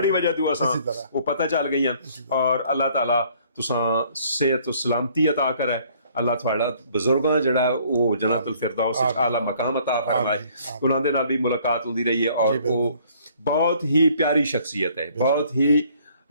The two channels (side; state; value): both; inverted; correlation -0.60